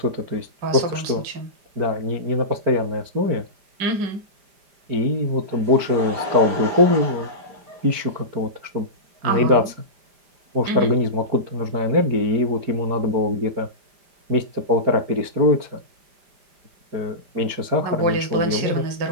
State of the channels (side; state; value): left; late; 5.0 ms